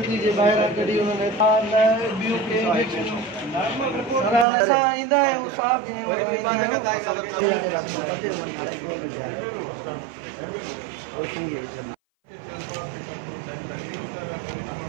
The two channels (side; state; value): left; drops out; at 4.5 s